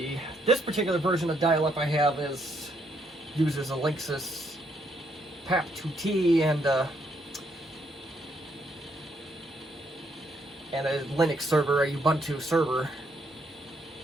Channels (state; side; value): normal; both; correlation 0.73